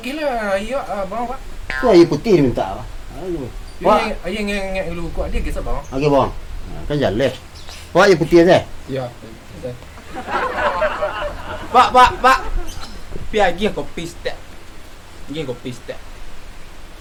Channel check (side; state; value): both; identical; correlation 1.00